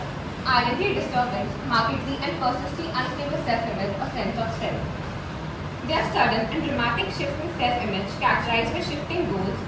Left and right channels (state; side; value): identical; both; correlation 1.00